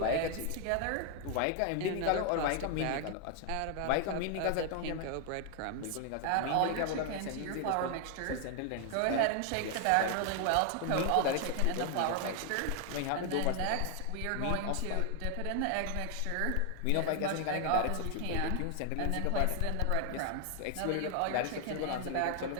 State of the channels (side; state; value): both; different; correlation 0.00